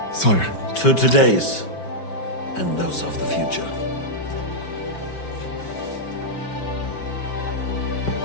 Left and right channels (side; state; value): right; late; 5.3 ms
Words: sire. To today's and those of the future.